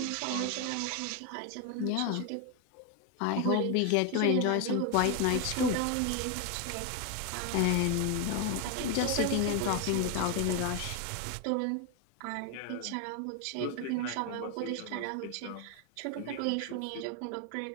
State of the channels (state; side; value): different; both; correlation 0.01